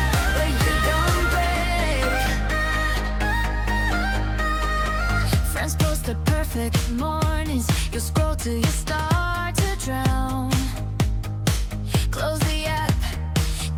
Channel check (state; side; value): identical; both; correlation 1.00